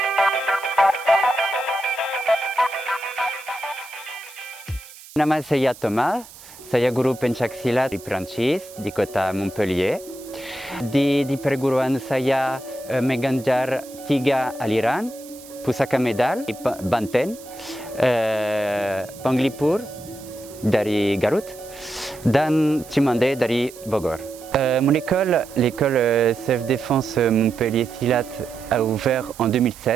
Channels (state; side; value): noise; right; hiss, 19 dB below the sound